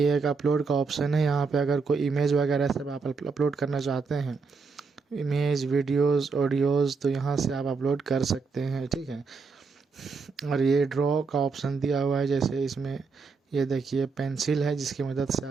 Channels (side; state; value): left; quieter; 4.8 dB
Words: अपलोड का ऑप्शन है। यहाँ पे अगर कोई इमेज वगैरह सब आप अपलोड करना चाहते हैं, इमेज, वीडियोस, ऑडियोज़, तो यहाँ से आप अपलोड कर सकते हैं, ठीक है। और ये ड्रॉ का ऑप्शन दिया हुआ है, जैसे इसमें ये देखिए पेंसिल है जिसकी मदद से